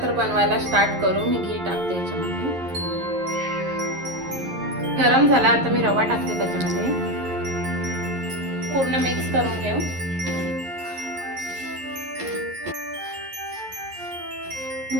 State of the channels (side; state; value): left; late; 11 ms